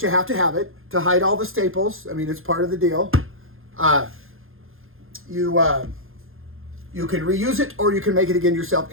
you have to have it to hide all the staples. I mean, it's part of the deal. You can reuse it, or you can make it again yourself.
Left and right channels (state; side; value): late; left; 0.60 ms